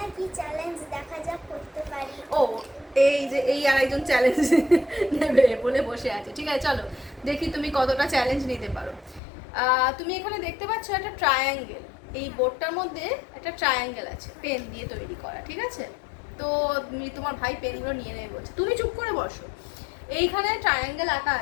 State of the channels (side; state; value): right; drops out; at 9.2 s